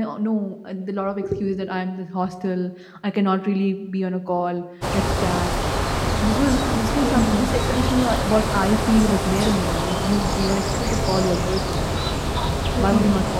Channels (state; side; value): identical; both; correlation 1.00